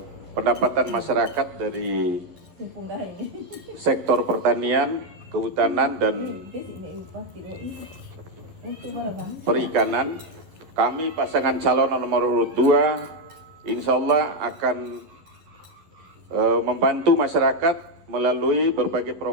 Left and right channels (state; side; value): late; left; 11 ms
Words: pendapatan masyarakat dari sektor pertanian, kehutanan, dan perikanan, kami pasangan calon nomor urut 2 insya Allah akan membantu masyarakat melalui berbagai